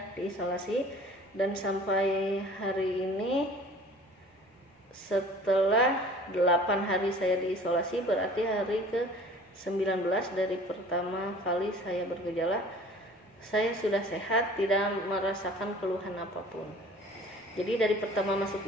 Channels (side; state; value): both; normal; correlation 0.47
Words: diisolasi, dan sampai hari ini setelah 8 hari saya diisolasi, berarti hari ke-19 dari pertama kali saya bergejala, saya sudah sehat, tidak merasakan keluhan apapun. Jadi dari pertama masuk